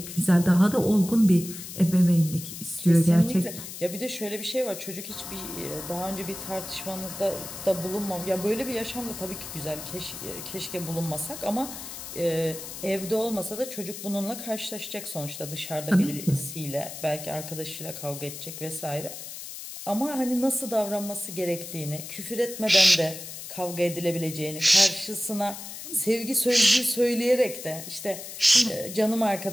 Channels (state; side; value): noise; left; hiss, 10 dB below the sound